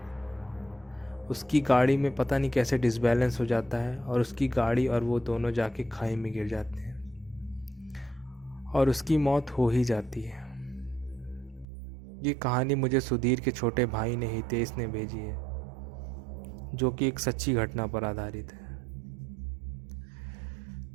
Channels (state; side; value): drops out; left; at 11.7 s